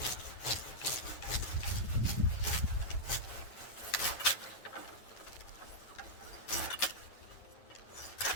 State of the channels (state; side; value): late; right; 9.2 ms